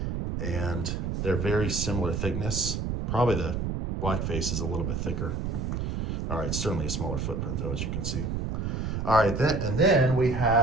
And they're very similar thickness. Probably the blackface is a little bit thicker. All right, certainly a smaller footprint though, as you can see. All right, then I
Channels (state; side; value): noise; right; rumble, 2 dB below the sound